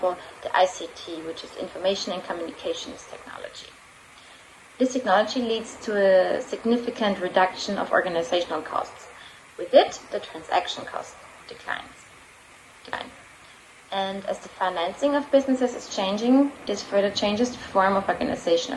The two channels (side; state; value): both; identical; correlation 1.00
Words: the ICT, which is Information and Communications Technology. This technology leads to a significant reduction of organizational costs. With it, the transaction cost declines. And as the financing of businesses is changing, this further changes the form of